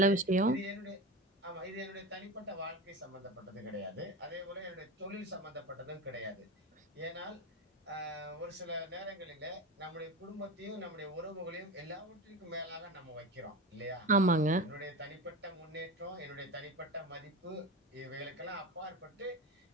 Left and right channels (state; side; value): normal; both; correlation 0.26